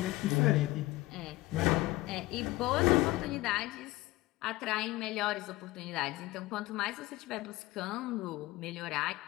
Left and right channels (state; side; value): quieter; right; 19.3 dB